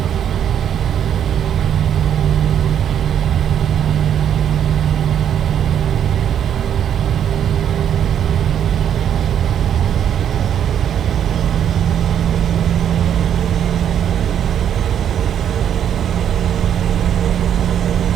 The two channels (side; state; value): left; quieter; 9.3 dB